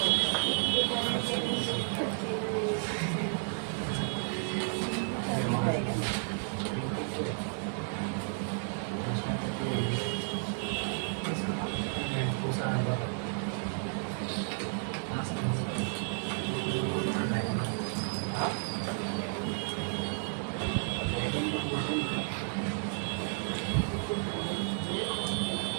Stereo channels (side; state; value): left; silent; 56 dB below the other